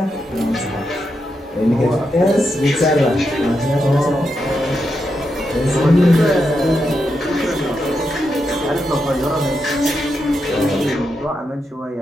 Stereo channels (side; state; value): both; normal; correlation 0.85